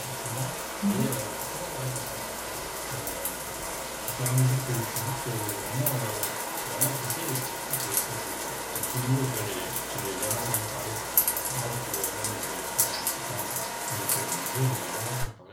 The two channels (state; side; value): identical; both; correlation 1.00